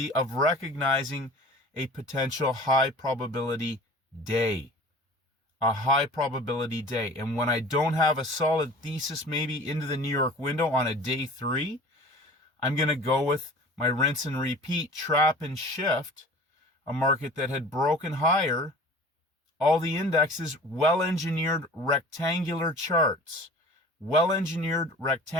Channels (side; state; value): both; normal; correlation 0.42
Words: of recognizing a potential high probability day. A high probability day. And when I don't have a solid thesis maybe into the New York window on a day 3, I'm going to go with my rinse and repeat, trap and shift, a market that had broken higher. All the indexes, well-engineered rectangular charts. Well-engineered